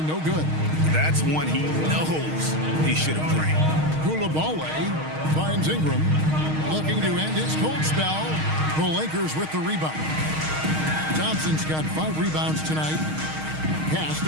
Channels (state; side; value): late; left; 6.4 ms